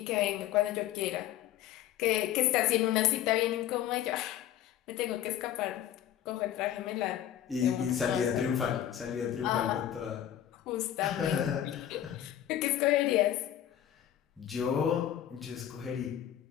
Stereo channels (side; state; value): right; quieter; 11.4 dB